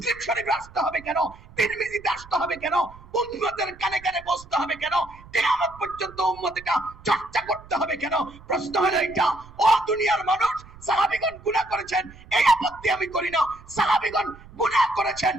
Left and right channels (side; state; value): right; noise; rumble, 20 dB below the sound